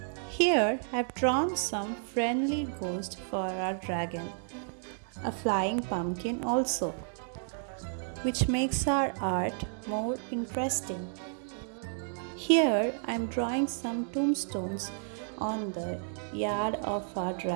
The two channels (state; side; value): silent; left; digital silence